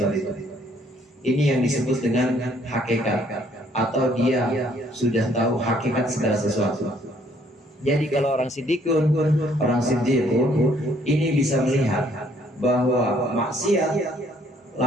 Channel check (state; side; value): normal; both; correlation 0.65